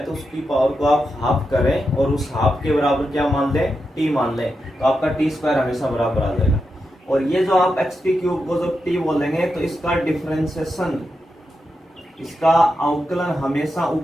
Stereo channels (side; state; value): both; normal; correlation 0.87